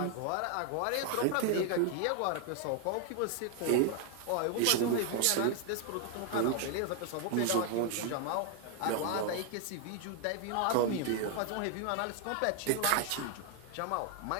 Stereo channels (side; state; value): both; different; correlation 0.00